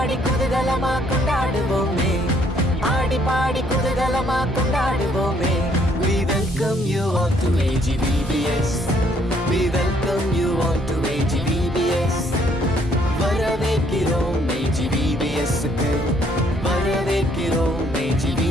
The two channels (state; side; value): normal; both; correlation 0.66